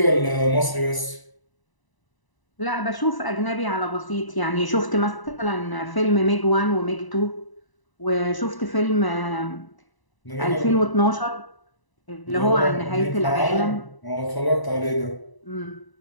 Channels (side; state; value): right; late; 1.0 ms